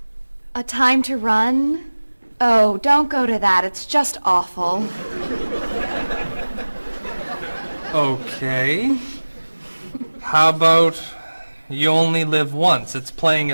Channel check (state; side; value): inverted; both; correlation -1.00